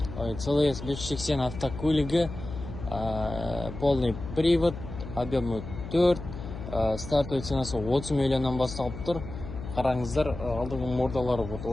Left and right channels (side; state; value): left; noise; hum, 10 dB below the sound